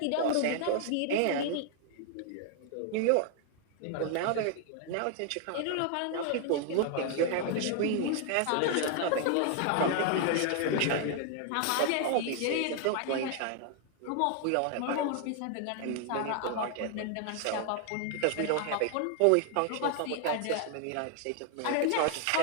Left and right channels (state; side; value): different; both; correlation 0.00